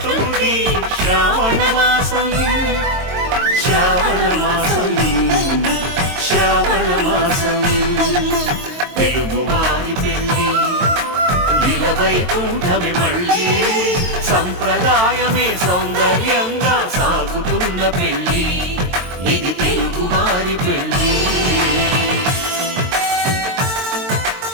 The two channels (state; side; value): late; left; 22 ms